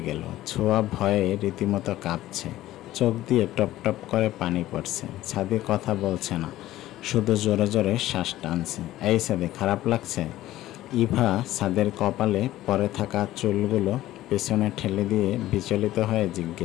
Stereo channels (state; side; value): quieter; right; 15.0 dB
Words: গেল। ছোঁয়া ভয়ে রীতিমতো কাঁপছে, চোখ দিয়ে টপ টপ করে পানি পড়ছে। সাদি কথা বলছে না, শুধু জোরে জোরে শ্বাস টানছে। এই সাদি, খারাপ লাগছে? ইভা সাদের কপালে পরে থাকা চুলগুলো পেছনে ঠেলে দিয়ে বিচলিত হয়ে